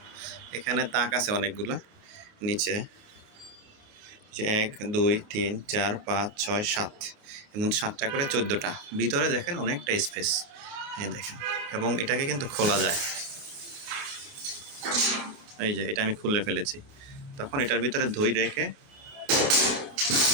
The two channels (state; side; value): late; left; 29 ms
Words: এখানে তাক আছে অনেকগুলা নিচে। যে ১, ২, ৩, ৪, ৫, ৬, ৭ এমন ৭টা করে ১৪টা। ভিতরে দেখেন অনেকটা স্পেস। এই দেখেন এবং এটাকে কিন্তু খোলা যায়। এই যে এটা আমি খুলে ফেলেছি। তখন এটার ভিতরে দই রেখে